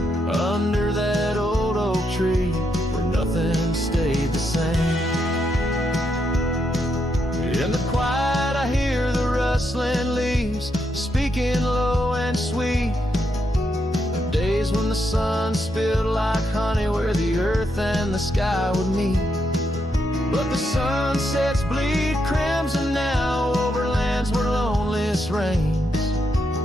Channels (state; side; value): normal; both; correlation 0.80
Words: under that old oak tree where nothing stayed the same. In the quiet I hear the rustling leaves speaking low and sweet, days when the sun spilled like honey where the earth and the sky would meet. But the sunsets bleed crimson now over lands where loneliness reigns.